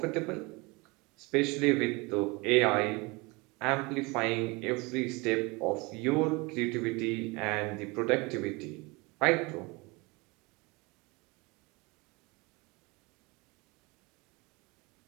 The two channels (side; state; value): left; quieter; 26.2 dB